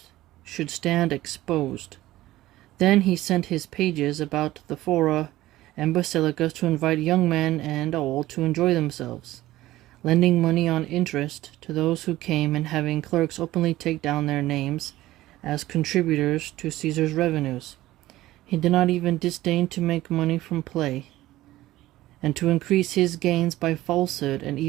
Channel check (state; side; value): quieter; left; 16.2 dB